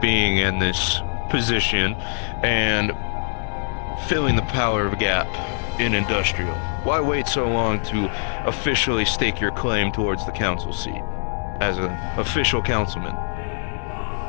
in this position and filling the power gap in industrial, why wait so long to officially stake your claim towards the council seat as an official councilman?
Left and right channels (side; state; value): right; silent; digital silence